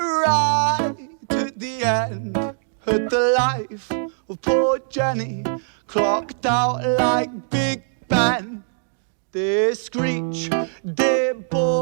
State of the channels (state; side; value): silent; left; digital silence